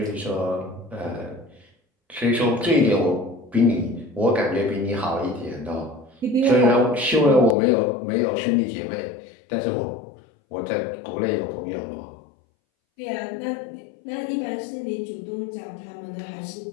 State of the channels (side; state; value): right; drops out; at 7.6 s